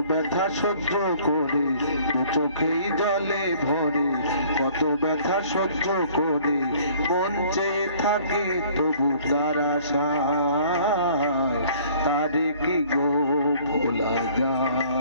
ব্যথা সহ্য করে, দু চোখেই জলে ভরে কত ব্যথা সহ্য করে মন চেয়ে থাকে তবু তার আশায় তারে কি গো ভোলা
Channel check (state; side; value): inverted; both; correlation -0.55